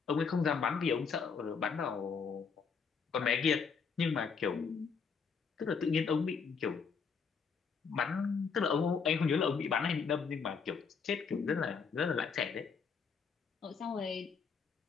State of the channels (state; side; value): quieter; right; 5.8 dB